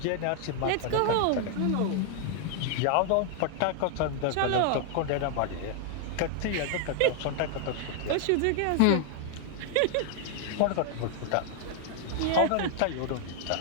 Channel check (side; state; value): both; different; correlation 0.00